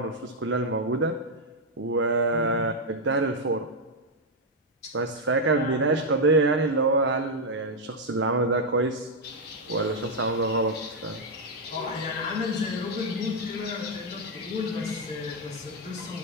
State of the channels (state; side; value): normal; both; correlation -0.01